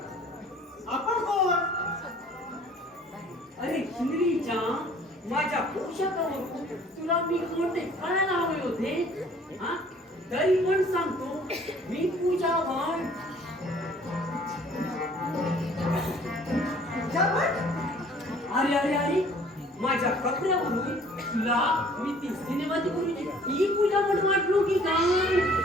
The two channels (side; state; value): both; normal; correlation 0.54